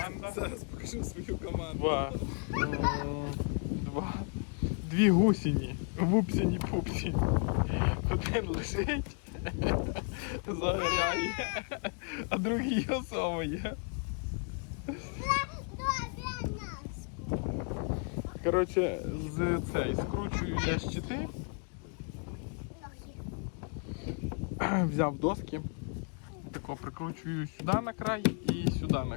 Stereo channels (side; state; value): right; quieter; 38.9 dB